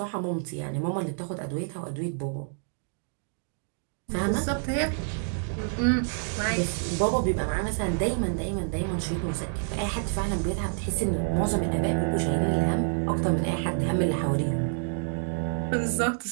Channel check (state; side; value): silent; left; 59 dB below the other